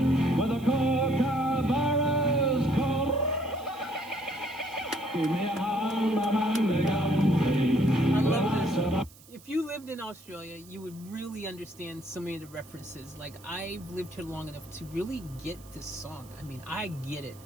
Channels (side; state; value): right; noise; hiss, 23 dB below the sound